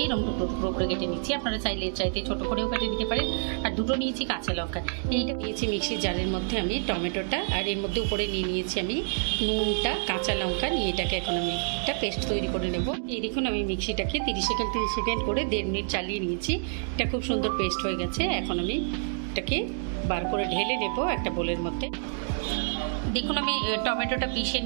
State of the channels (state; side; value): silent; left; digital silence